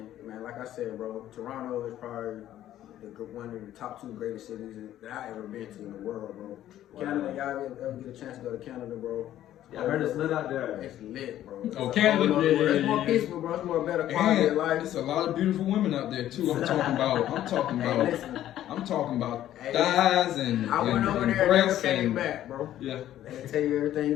man, like I said, bro, Toronto is probably one of the top 2 greatest cities that I ever been to in the world, bro. Canada, y'all ever get a chance to go to Canada, bro? Yeah, I heard it's lit out there. It's lit, bro. Oh, Canada, it's more peaceful, bro. It's more better quality of life. It's a lot of beautiful women out there too. I'm talking about thighs and I went over there and never came back, bro. Yeah. They tell you everything you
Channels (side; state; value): right; quieter; 12.5 dB